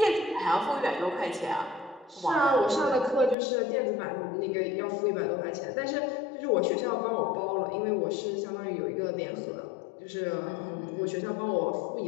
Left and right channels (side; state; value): right; drops out; at 3.4 s